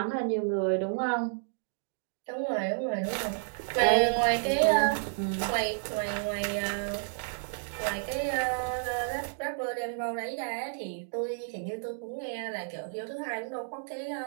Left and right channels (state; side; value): silent; left; digital silence